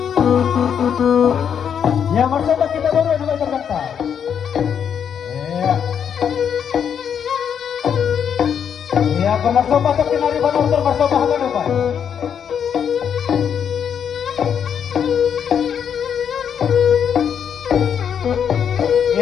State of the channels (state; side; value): quieter; right; 8.0 dB